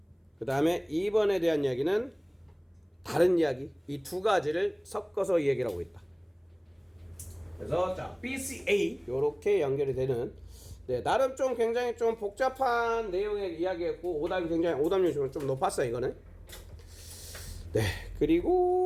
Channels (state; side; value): identical; both; correlation 1.00